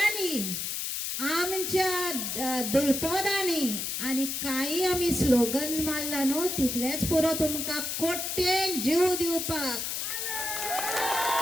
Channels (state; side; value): noise; left; hiss, 2 dB below the sound